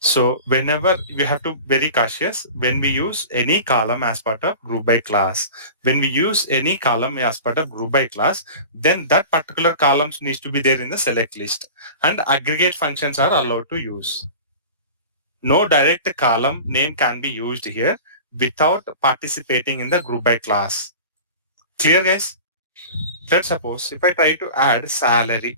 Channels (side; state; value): both; inverted; correlation -0.36